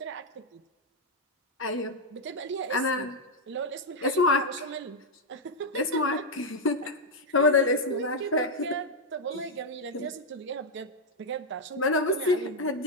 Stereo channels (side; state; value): both; normal; correlation 0.00